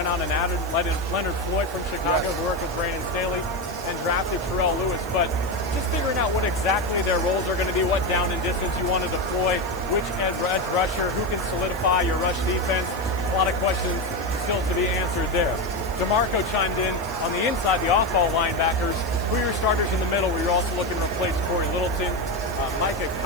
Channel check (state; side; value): noise; right; hiss, 19 dB below the sound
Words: out and added Leonard Floyd from Chicago, who worked with Brandon Staley, and drafted Terrell Lewis. But just figuring out what exactly their roles are going to be, what down and distance you want to deploy, which edge rusher, who can solidify your rush defense. A lot of questions still to be answered there. DeMarco chimed in on the inside, the off-ball linebackers. Who are your starters in the middle where you're also looking to replace Corey Littleton? Micah